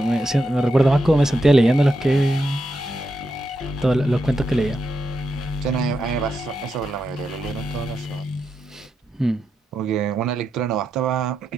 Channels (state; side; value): normal; both; correlation 0.85